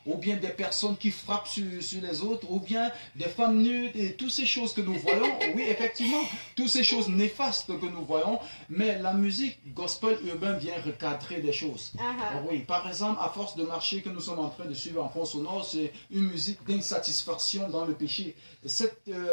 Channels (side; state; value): both; inverted; correlation -1.00